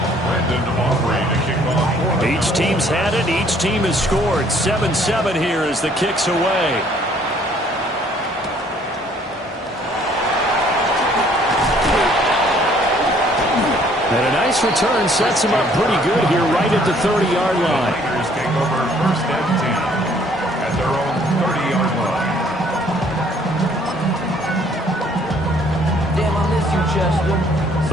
Brandon Aubrey to kick off. Each team's had it. Each team has scored. 7-7 here as the kick's away. And a nice return sets him up pretty good here right at the 30-yard line. Niners take over 1st and 10 at their own 30-yard line. Damn, I miss you, Chester.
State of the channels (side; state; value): both; normal; correlation 0.61